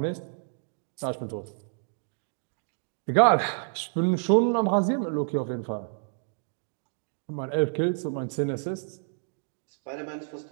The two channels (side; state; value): left; silent; digital silence